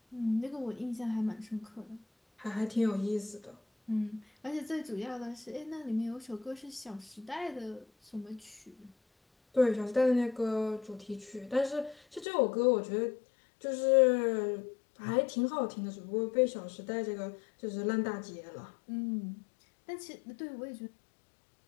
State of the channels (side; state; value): right; drops out; at 12.2 s